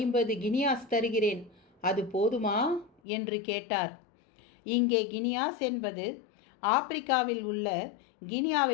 கினியாஸ் தருகிறேன். அது போதுமா என்று கேட்டார். இங்கே கினியாஸ் என்பது ஆப்பிரிக்காவில் உள்ள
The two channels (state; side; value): drops out; right; at 2.9 s